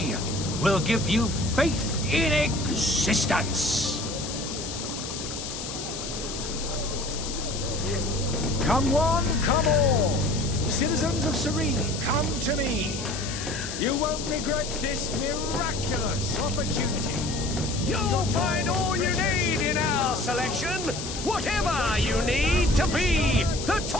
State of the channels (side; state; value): left; noise; hiss, 8 dB below the sound